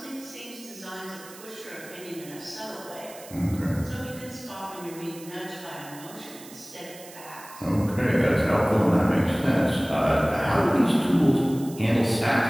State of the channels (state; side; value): noise; right; hiss, 18 dB below the sound